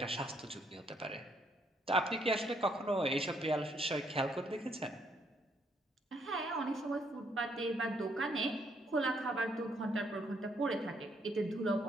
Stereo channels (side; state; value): both; normal; correlation 0.71